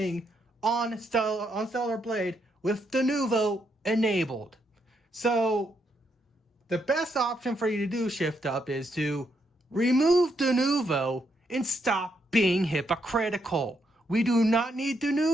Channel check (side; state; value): both; normal; correlation 0.77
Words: on Stellar Blade with Denuvo enabled. So the best option for you to do, shift up, is to remove Denuvo and stop being hypocritical. We do not need